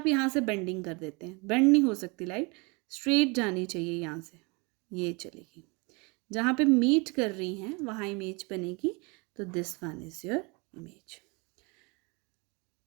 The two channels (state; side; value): quieter; left; 29.2 dB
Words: यहाँ से बेंडिंग कर देते हैं। बेंड नहीं हो सकती लाइन, स्ट्रेट जानी चाहिए यहाँ से, ये चलेगी। जहाँ पे मीट कर रही हैं वहाँ इमेज बनेगी। तो this one is your image.